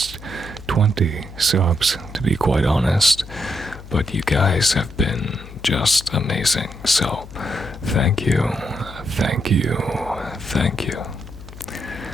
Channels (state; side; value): noise; left; hum, 15 dB below the sound